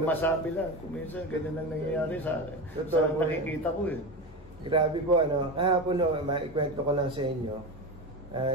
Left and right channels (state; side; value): normal; both; correlation 0.22